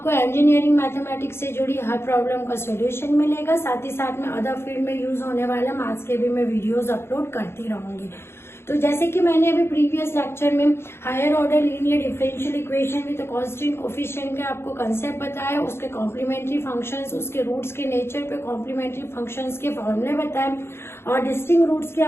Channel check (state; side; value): late; right; 0.12 ms